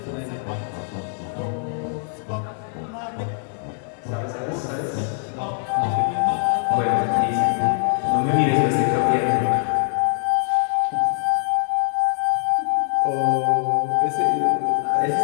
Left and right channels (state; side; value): silent; right; digital silence